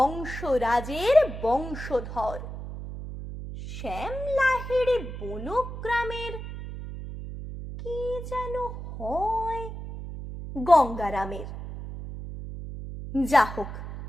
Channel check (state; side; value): noise; right; hum, 9 dB below the sound